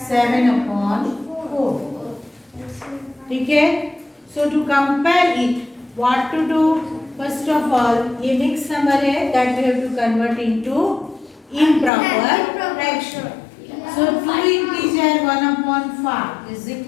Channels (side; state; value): right; drops out; at 11.9 s